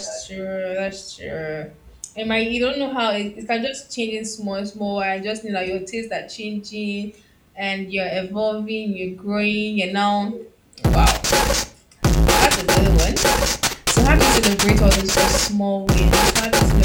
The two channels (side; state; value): both; identical; correlation 1.00